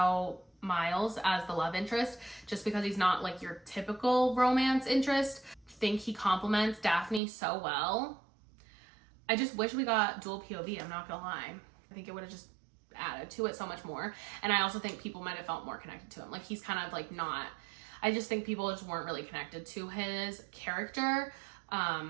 Miles as the love interest just because he's not like your typical romance interest. I think he complements Daphne so well. I just wish we got dual POV, I'm not gonna lie. I think it would have just added to it so much more. And I also think people might have felt more connected to him. Like he's kind of like not, I just think people just weren't really connected to his character.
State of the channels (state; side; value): drops out; left; at 7.2 s